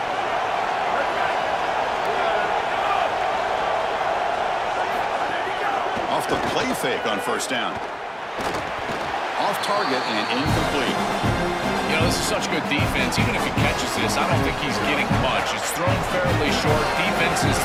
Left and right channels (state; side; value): identical; both; correlation 1.00